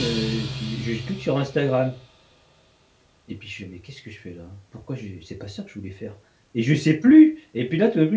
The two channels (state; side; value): identical; both; correlation 1.00